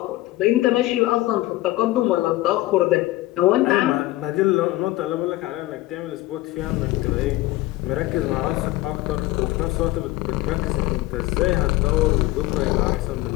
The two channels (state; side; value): quieter; right; 17.8 dB